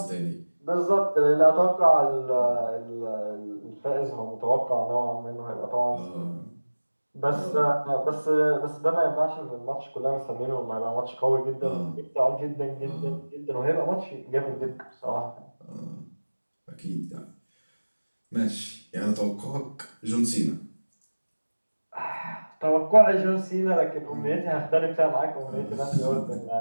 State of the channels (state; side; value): inverted; both; correlation -1.00